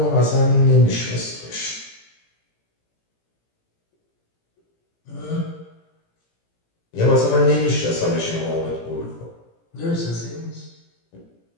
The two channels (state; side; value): late; right; 17 ms